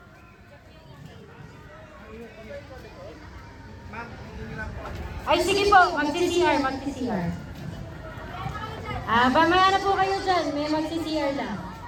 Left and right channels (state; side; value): identical; both; correlation 1.00